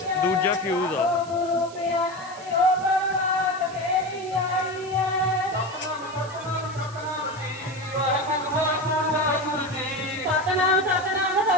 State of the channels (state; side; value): noise; right; hiss, 20 dB below the sound